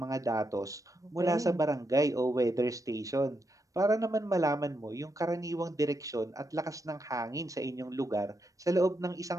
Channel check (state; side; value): late; left; 0.16 ms